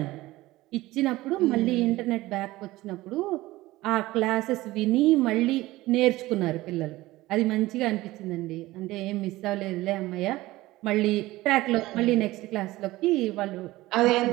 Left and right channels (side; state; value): left; quieter; 18.2 dB